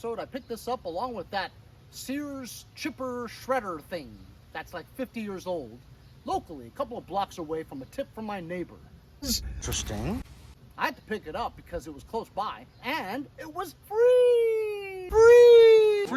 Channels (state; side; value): identical; both; correlation 1.00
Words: I picked this up along with that Sears chipper shredder thing that's like 50 years old, locally, a couple of blocks away from a tip from my neighbor. Interesting. I had to pick it up because it was close by, and it was free! Free!